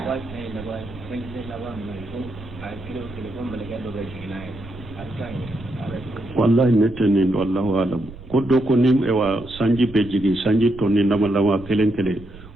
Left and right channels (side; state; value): right; noise; rumble, 17 dB below the sound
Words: wallahi ne tɛ nin wallahu alam ko do ko ni ewa sanji be jigi sanji to ni nama lawa kelen kelen